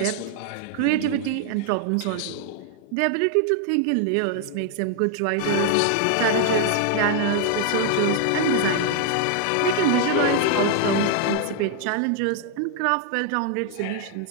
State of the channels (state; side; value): different; both; correlation 0.00